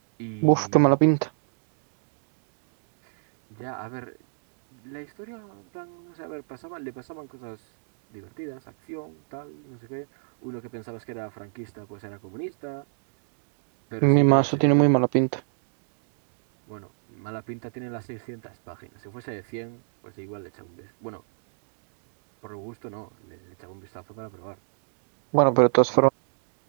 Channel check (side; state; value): left; silent; digital silence